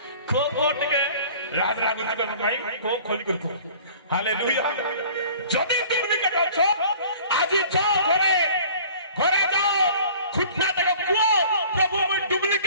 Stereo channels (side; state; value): both; inverted; correlation -0.48